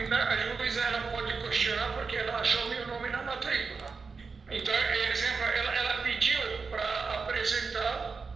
juíza ela pode questionar porque ela achou meu nome na matrícula. Então, exemplo, ela pediu para apresentar,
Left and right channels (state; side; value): quieter; left; 4.8 dB